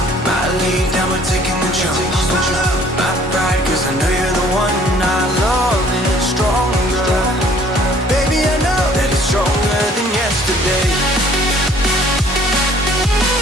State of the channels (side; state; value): both; normal; correlation 0.57